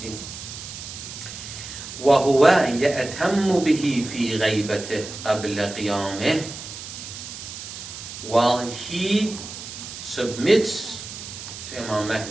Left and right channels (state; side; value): noise; right; hiss, 11 dB below the sound